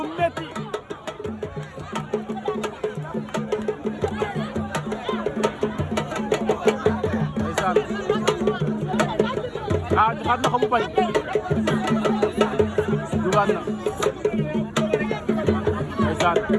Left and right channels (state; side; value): identical; both; correlation 1.00